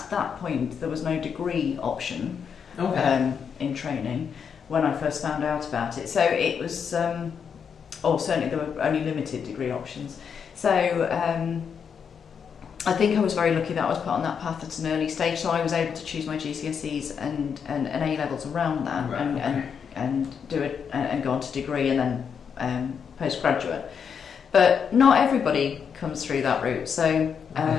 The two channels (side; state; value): right; quieter; 6.9 dB